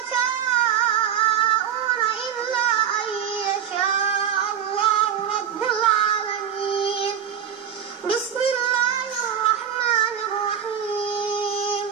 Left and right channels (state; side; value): quieter; left; 9.0 dB